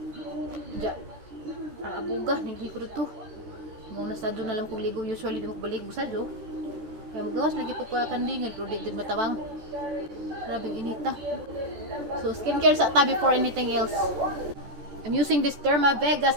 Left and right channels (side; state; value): left; late; 14 ms